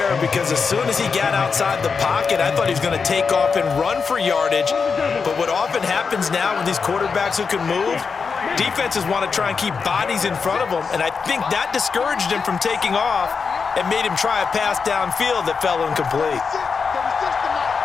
because as soon as he got outside the pocket, I thought he was going to take off and run for yardage. But what often happens now with these quarterbacks who can move, defenses want to try and keep bodies in front of them, and I think that discouraged him from taking off and made him try a pass downfield that fell incomplete.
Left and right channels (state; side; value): quieter; right; 5.4 dB